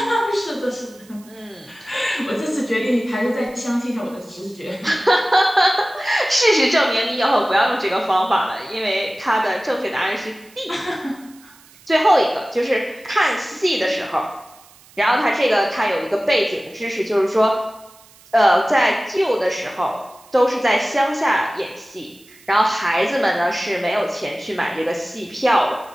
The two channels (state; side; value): noise; right; hiss, 26 dB below the sound